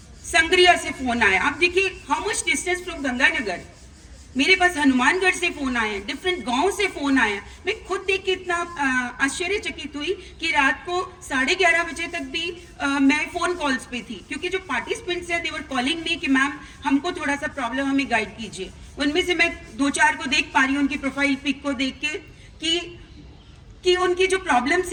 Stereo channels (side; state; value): both; identical; correlation 1.00